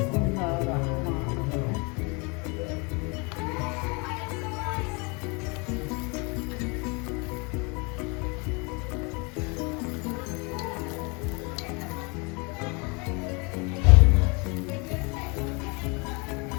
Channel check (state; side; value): quieter; right; 30.5 dB